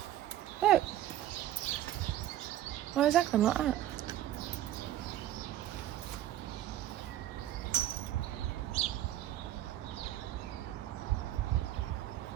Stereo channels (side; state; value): left; quieter; 12.9 dB